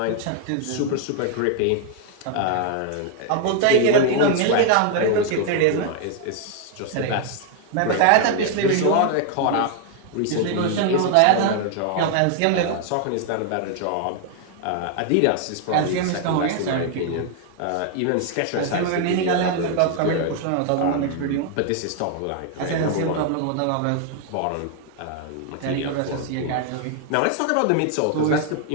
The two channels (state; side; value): different; both; correlation 0.00